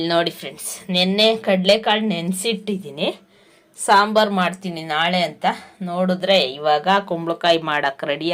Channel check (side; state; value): both; identical; correlation 1.00